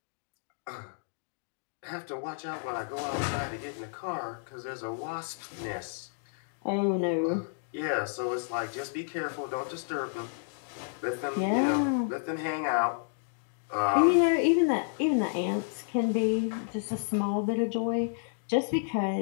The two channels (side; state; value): right; silent; digital silence